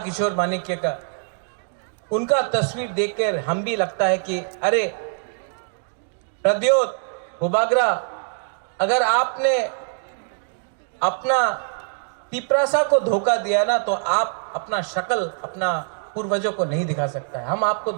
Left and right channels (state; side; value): silent; left; 63 dB below the other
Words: माणिक्य का। उनका तस्वीर देखकर हम भी लगता है कि अरे प्रद्योत भूबागरा, अगर आपने अपना तिपरासा को धोखा दिया ना, तो आप अपना शक्ल अपना पूर्वजों को नहीं दिखा सकता है। हम आपको